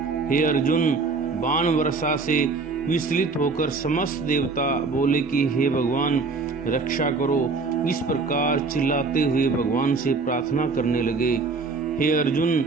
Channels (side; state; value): left; quieter; 4.2 dB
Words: हे अर्जुन, बाण वर्षा से विचलित होकर समस्त देवता बोले कि हे भगवान, रक्षा करो। इस प्रकार चिल्लाते हुए भगवान से प्रार्थना करने लगे। हे अर्जुन,